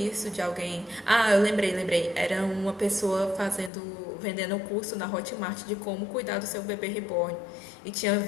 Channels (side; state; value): right; drops out; at 3.7 s